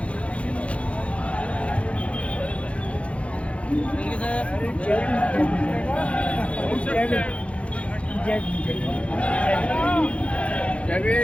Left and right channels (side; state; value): right; late; 0.062 ms